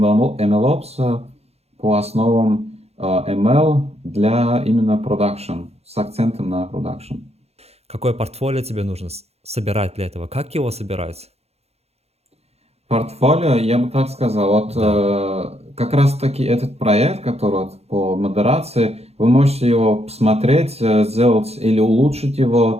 по основам ML для именно продакшн, с акцентом на продакшн. Какое портфолио тебе нужно собирать для этого? Как его собирать? Портфолио, я бы так сказал, вот Да. как раз таки этот проект, который вот по модерации, вы можете его посмотреть, сделать или улучшить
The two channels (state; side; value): late; left; 0.30 ms